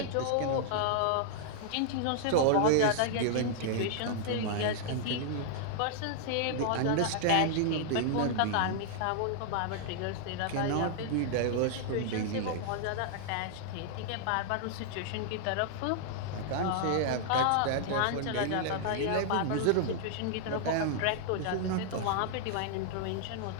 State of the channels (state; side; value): different; both; correlation -0.01